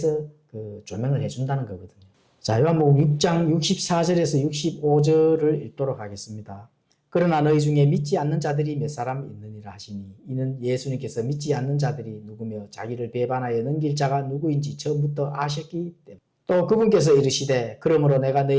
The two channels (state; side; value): identical; both; correlation 1.00